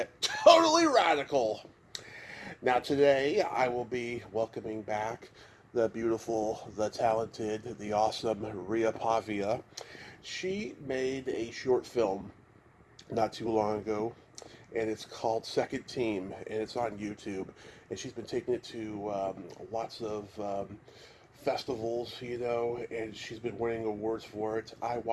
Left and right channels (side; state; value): both; identical; correlation 1.00